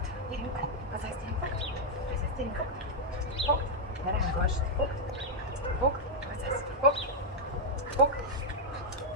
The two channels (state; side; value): normal; both; correlation -0.03